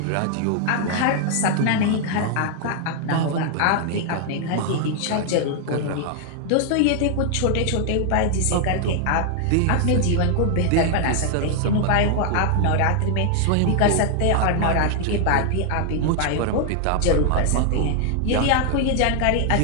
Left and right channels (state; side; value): different; both; correlation 0.00